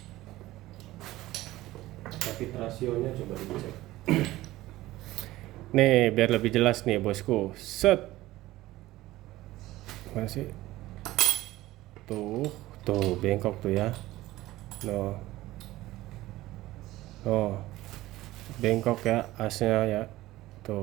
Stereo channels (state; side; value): quieter; left; 16.9 dB